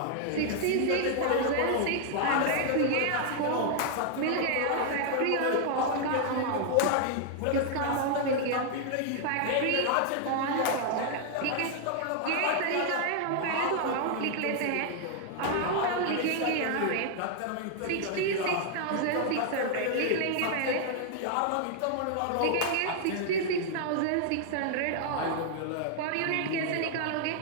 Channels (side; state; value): both; different; correlation 0.00